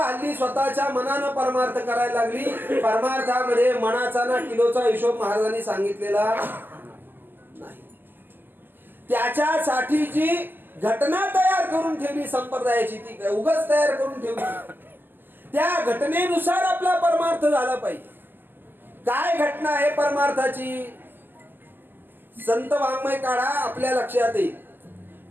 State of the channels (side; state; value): left; late; 0.092 ms